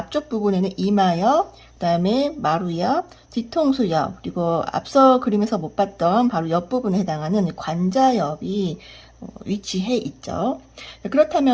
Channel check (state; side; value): identical; both; correlation 1.00